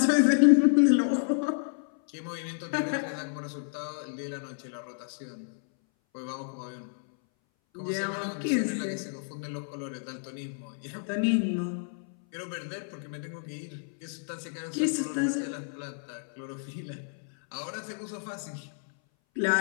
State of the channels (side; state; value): right; silent; 58 dB below the other